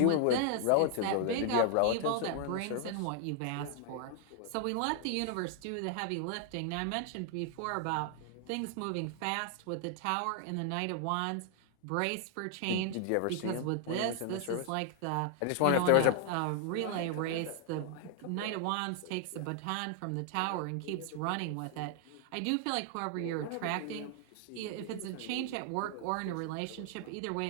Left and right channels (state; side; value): different; both; correlation 0.00